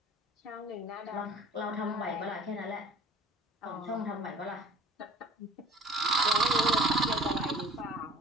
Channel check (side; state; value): both; normal; correlation 0.47